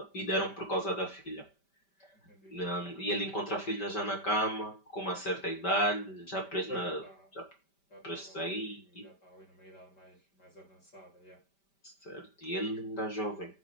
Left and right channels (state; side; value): late; right; 5.1 ms